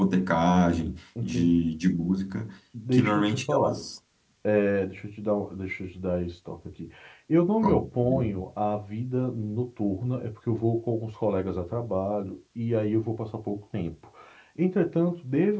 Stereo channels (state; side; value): identical; both; correlation 1.00